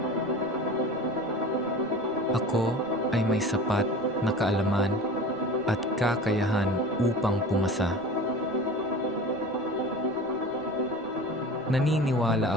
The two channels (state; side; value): noise; right; rumble, 25 dB below the sound